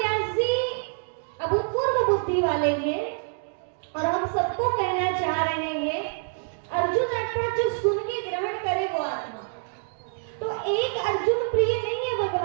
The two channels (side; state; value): left; silent; digital silence